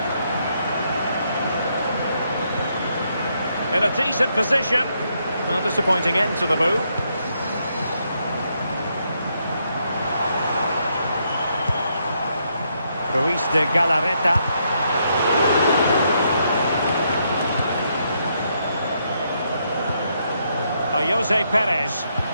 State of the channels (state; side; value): inverted; both; correlation -0.77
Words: In a decent position. A disappointing end to the move. Luis de Galarreta. Jose Perez.